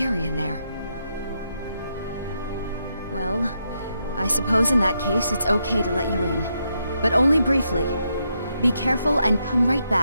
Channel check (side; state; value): both; inverted; correlation -0.81